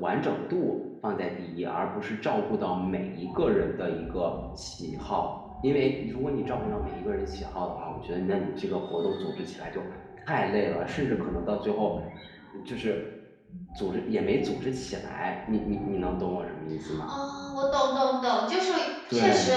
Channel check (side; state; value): both; identical; correlation 1.00